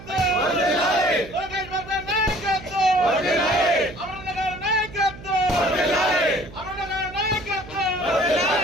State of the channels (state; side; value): noise; right; hum, 16 dB below the sound